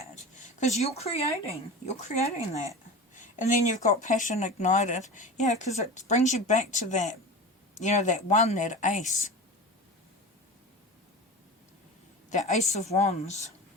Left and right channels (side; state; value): both; normal; correlation 0.31